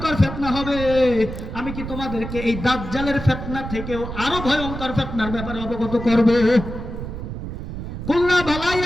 ফিতনা হবে। আমি কি তোমাদেরকে এই দাজ্জালের ফিতনা থেকেও আরো ভয়ঙ্কর ফিতনার ব্যাপারে অবগত করব? কুল্লা বালা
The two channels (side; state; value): right; noise; rumble, 7 dB below the sound